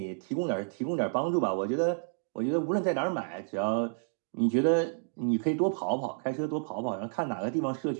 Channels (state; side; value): silent; left; digital silence